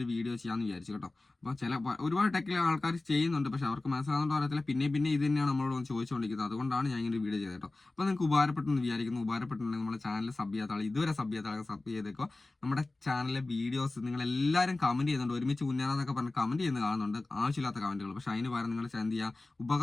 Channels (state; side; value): quieter; right; 3.1 dB